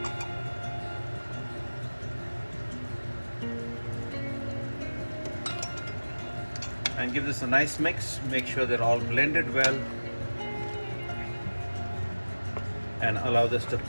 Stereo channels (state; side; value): inverted; both; correlation -1.00